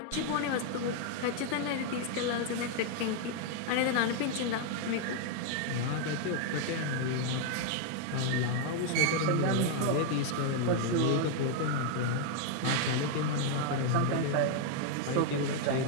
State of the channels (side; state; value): both; different; correlation 0.00